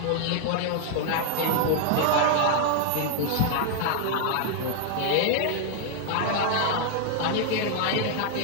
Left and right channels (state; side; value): different; both; correlation 0.00